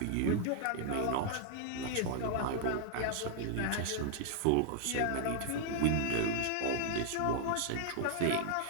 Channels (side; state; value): both; different; correlation -0.01